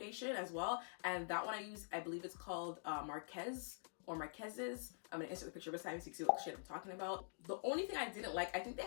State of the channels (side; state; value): right; silent; digital silence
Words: as well. And that one I use, I believe it's called Marquez or Marquez's. I'm gonna insert the picture beside me so you can see what shade I'm talking about. The only thing I didn't like, I think they